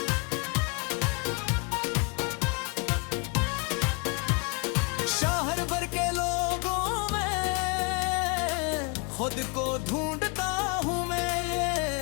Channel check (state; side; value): quieter; right; 32.1 dB